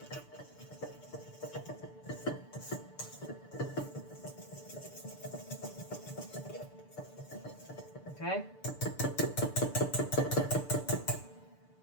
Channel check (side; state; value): right; late; 6.8 ms